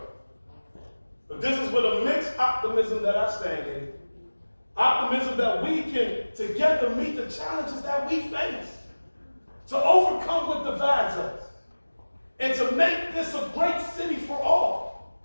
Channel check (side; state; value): both; inverted; correlation -1.00